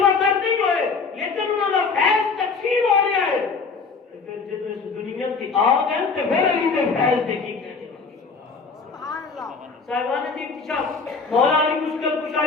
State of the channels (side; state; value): right; quieter; 4.8 dB